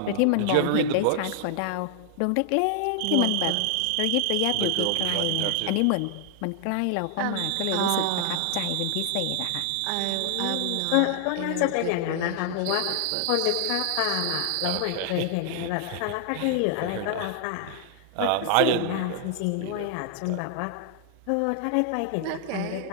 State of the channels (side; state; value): both; different; correlation 0.00